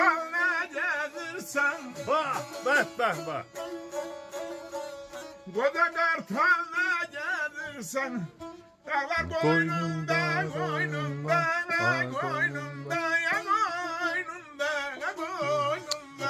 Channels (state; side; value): identical; both; correlation 1.00